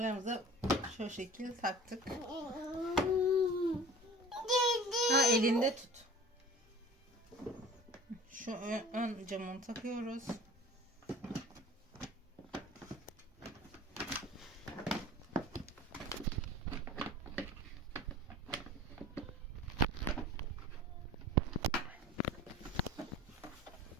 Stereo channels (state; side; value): normal; both; correlation 0.42